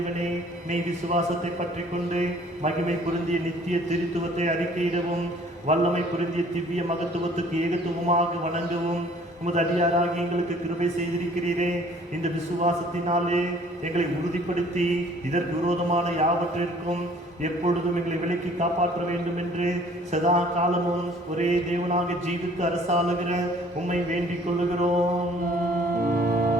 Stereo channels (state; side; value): normal; both; correlation 0.55